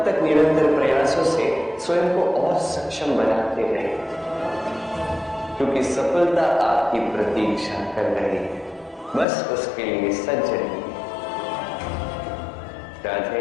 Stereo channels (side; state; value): right; drops out; at 9.2 s